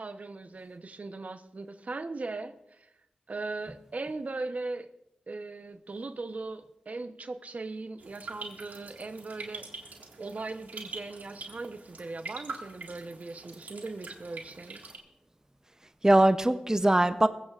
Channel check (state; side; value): normal; both; correlation 0.96